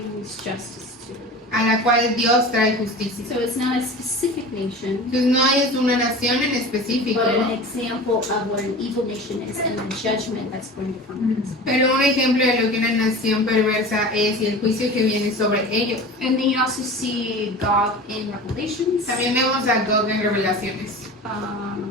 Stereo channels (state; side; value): normal; both; correlation 0.35